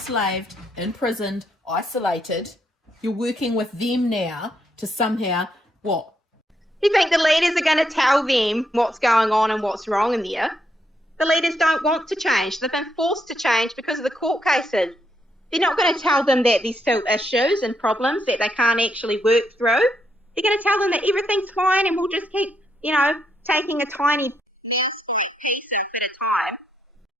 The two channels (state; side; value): normal; both; correlation 0.77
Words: imprisoned, isolated, you're working with them now to somehow, what? You think the leaders are going to tell them what's going on and what's wrong in there? The leaders don't want to change. They've been forced to change because of the court cases. They're not going to tell them that there's still issues and problems that they can't actually work through. They're going to tell them that everything's fine and we'll just keep, taking a tiny piece at a time.